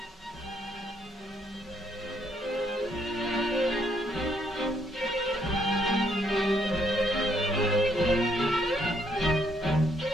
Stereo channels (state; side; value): normal; both; correlation 0.71